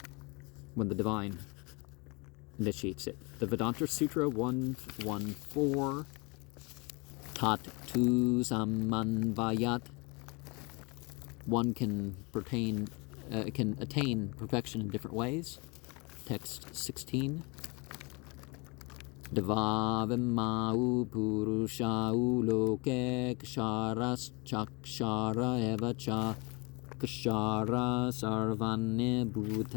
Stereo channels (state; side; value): quieter; right; 29.2 dB